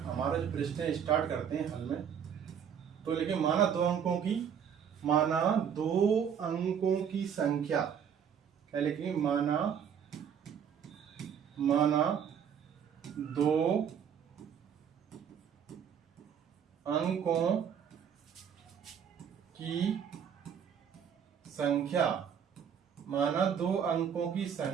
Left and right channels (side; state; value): left; quieter; 8.0 dB